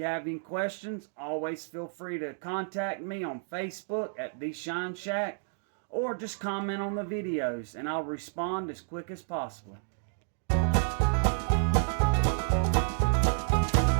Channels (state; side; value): silent; left; digital silence